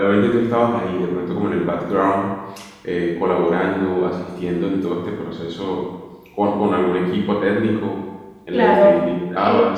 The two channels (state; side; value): identical; both; correlation 1.00